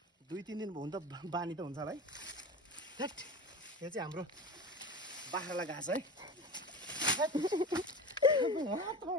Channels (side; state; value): both; normal; correlation 0.31